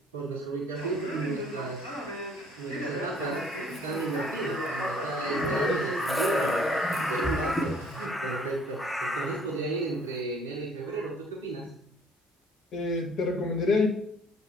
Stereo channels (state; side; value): normal; both; correlation 0.57